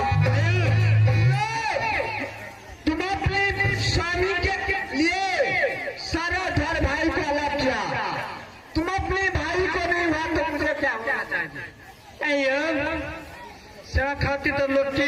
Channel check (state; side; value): identical; both; correlation 1.00